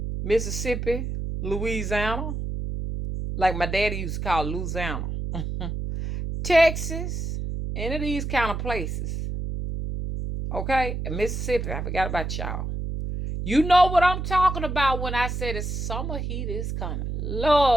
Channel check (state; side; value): noise; right; hum, 4 dB below the sound